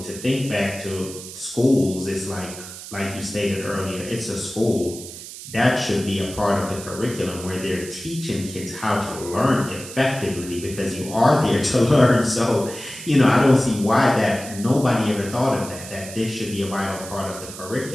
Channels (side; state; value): right; noise; hiss, 12 dB below the sound